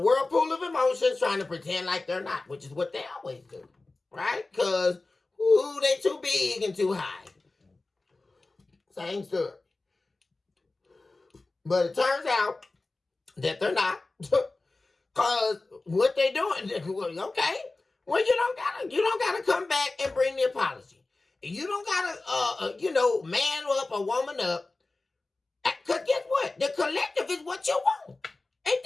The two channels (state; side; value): quieter; right; 3.3 dB